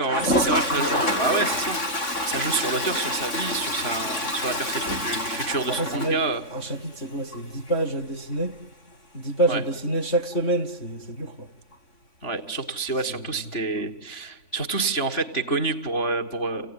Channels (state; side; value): late; right; 3.5 ms